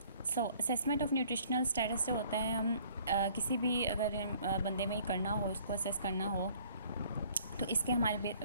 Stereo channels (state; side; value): inverted; both; correlation -0.57